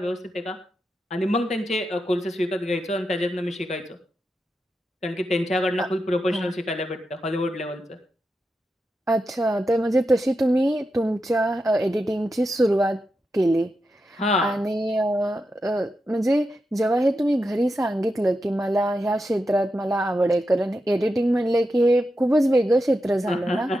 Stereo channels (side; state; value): both; normal; correlation 0.88